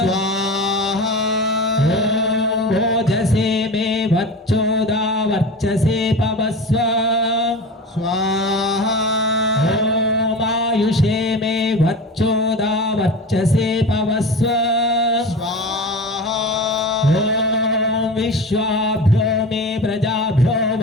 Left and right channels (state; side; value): normal; both; correlation 0.31